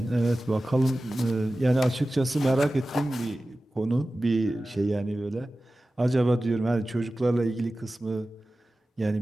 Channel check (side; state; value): both; normal; correlation 0.95